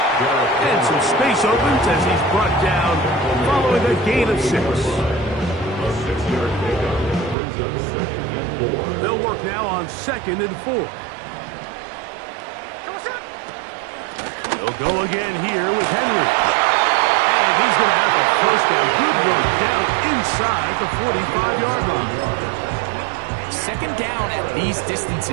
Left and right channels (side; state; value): left; drops out; at 7.4 s